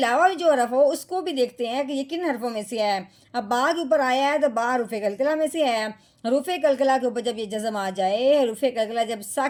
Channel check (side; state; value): both; identical; correlation 1.00